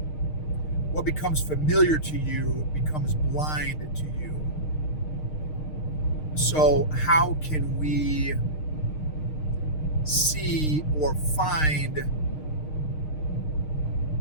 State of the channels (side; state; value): right; late; 6.5 ms